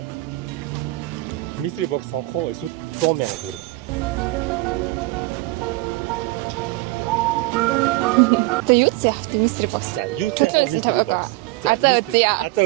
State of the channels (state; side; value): quieter; left; 20.7 dB